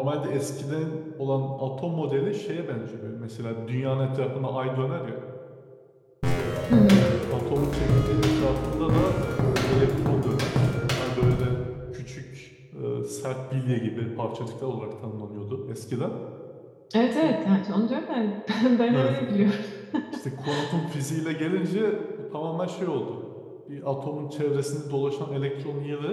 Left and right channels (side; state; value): both; identical; correlation 1.00